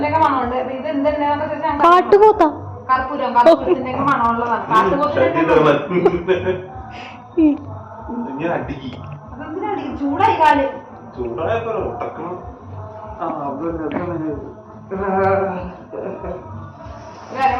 മണമുണ്ട്. ഇത് എന്തെണ്ണയാന്ന് വെച്ചാൽ കർപ്പൂരത്തിന്റെ മണമുള്ളതാണ്. അതെന്തിനാ അടിക്കും? ചൂടായി കാല്. ഒരു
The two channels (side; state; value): both; identical; correlation 1.00